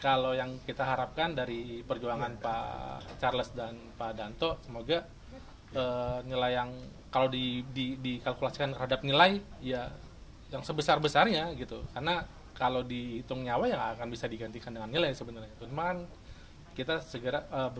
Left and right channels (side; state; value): both; identical; correlation 1.00